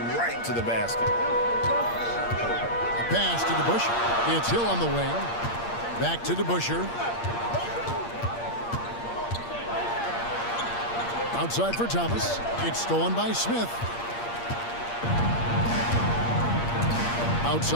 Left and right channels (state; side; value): late; right; 8.6 ms